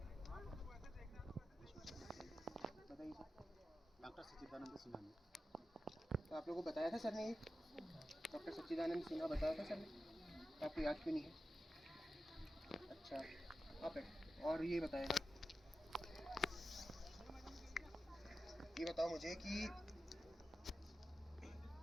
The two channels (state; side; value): normal; both; correlation 0.92